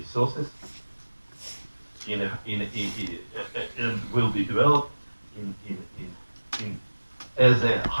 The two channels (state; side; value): inverted; both; correlation -1.00